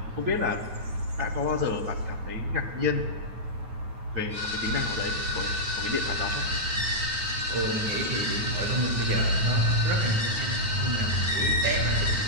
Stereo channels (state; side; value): late; left; 9.4 ms